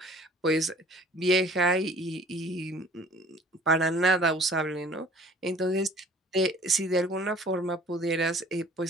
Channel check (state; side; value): normal; both; correlation 0.50